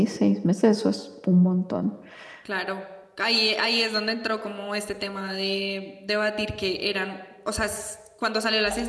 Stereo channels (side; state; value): both; identical; correlation 1.00